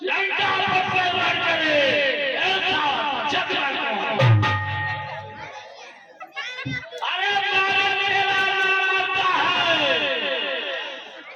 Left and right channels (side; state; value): both; identical; correlation 1.00